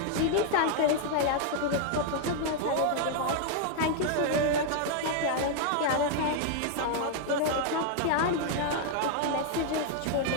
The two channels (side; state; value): both; different; correlation 0.00